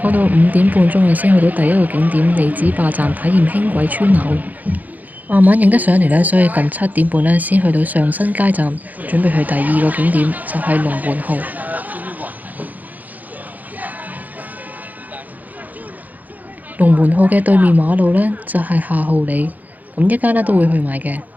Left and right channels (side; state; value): left; late; 0.081 ms